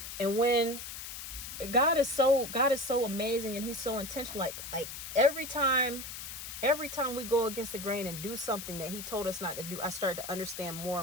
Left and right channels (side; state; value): left; noise; hiss, 9 dB below the sound